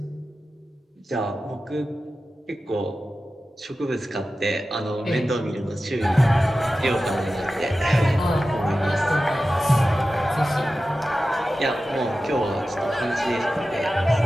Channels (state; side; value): normal; both; correlation 0.94